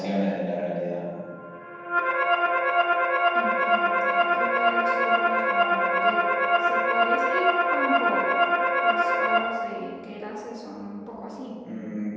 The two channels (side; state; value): both; identical; correlation 1.00